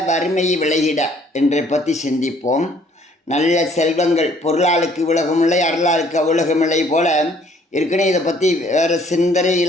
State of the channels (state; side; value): normal; both; correlation 0.60